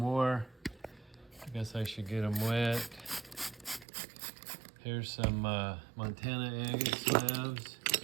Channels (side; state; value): left; drops out; at 3.9 s